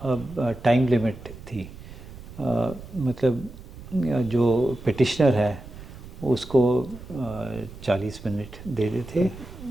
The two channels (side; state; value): right; noise; rumble, 15 dB below the sound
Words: अब टाइम लिमिट थी। मतलब जो पिटिशनर है उसको 40 मिनट देते थे